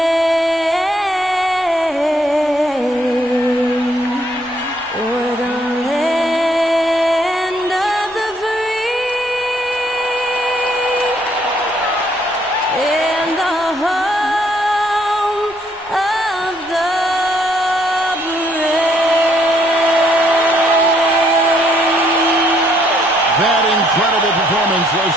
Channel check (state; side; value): noise; left; rumble, 28 dB below the sound